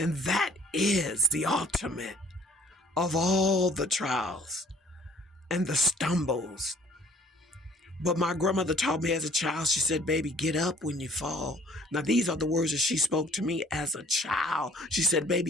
that is the ultimate of all the trials and the stumbles. But my grandmother taught me as a child, she said, baby, get up when you fall. Now, these are the words that she spoke to me as a child. She said,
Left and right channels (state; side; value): normal; both; correlation 0.57